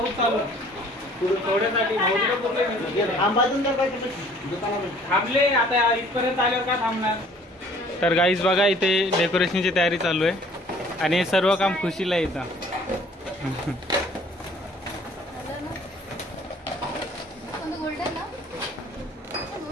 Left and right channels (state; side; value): normal; both; correlation 0.55